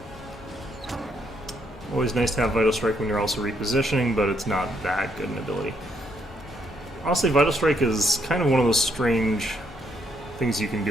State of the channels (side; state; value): both; normal; correlation 0.73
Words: Always nice to have Vital Strike when you're also repositioning, but it's not that good an ability. Honestly, Vital Strike is kind of one of those strange things you can